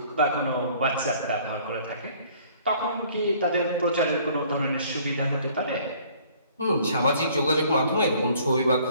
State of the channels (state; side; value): inverted; both; correlation -0.56